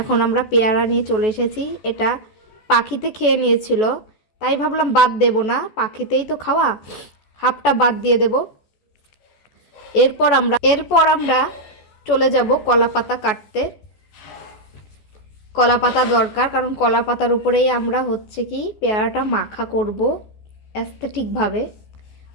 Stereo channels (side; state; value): right; late; 14 ms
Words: আমরা পেয়ারা নিয়ে চলে এসেছি। এটা পাখিতে খেয়ে নিয়েছিল, তাই ভাবলাম বাদ দেব না, পাখিতেই তো খাওয়া, হাফটা বাদ দিয়ে দেব। এরপর আমরা চলে যাব কলা পাতা কাটতে। কলা পাতা দরকার, কারণ কলা পাতার উপরেই আমরা পেয়ারাটা মাখা করব অ্যাস্থেটিকভাবে।